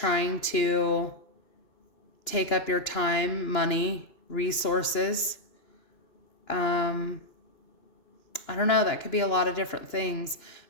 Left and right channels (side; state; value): right; late; 3.0 ms